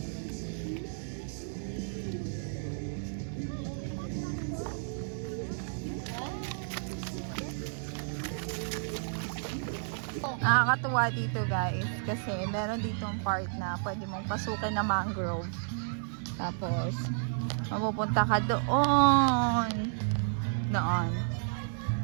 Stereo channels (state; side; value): silent; left; digital silence